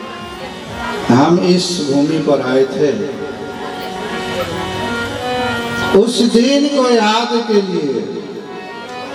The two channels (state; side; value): identical; both; correlation 1.00